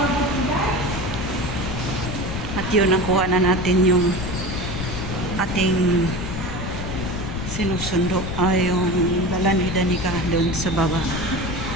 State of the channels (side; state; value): left; noise; rumble, 6 dB below the sound